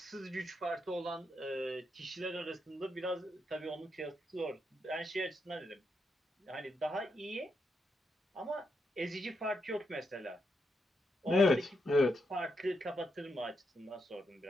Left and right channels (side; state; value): both; normal; correlation 0.82